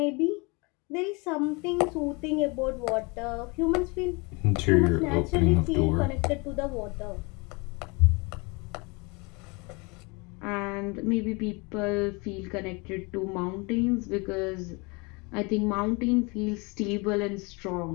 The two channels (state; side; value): quieter; right; 28.5 dB